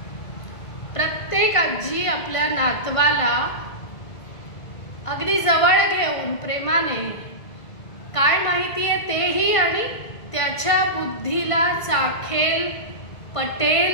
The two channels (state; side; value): late; right; 1.5 ms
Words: प्रत्येक आजी आपल्या नातवाला अगदी जवळ घेऊन प्रेमाने काय माहिती आहे तेही आणि त्याच्या बुद्धीला चाखेल, पटेल,